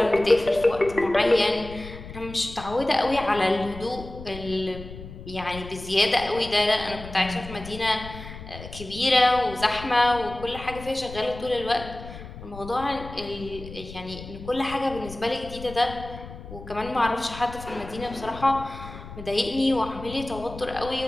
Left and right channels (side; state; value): left; noise; rumble, 13 dB below the sound